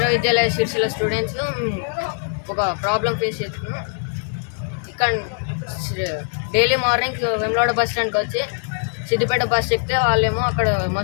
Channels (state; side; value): silent; right; 65 dB below the other